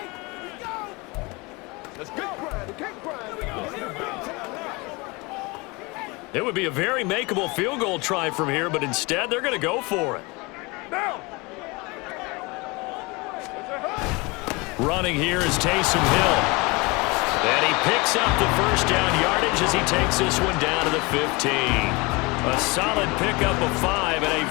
It would be a very makeable field goal try from here, but instead they're going to go for it. Running here is Taysom Hill. And he picks up the first down yardage as he takes this one down to the 15. A solid pickup of 5 and a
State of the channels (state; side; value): quieter; right; 25.9 dB